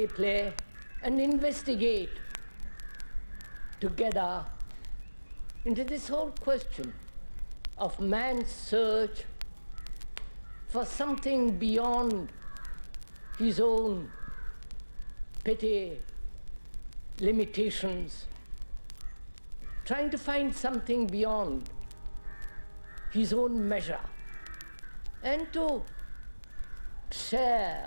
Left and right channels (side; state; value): both; inverted; correlation -1.00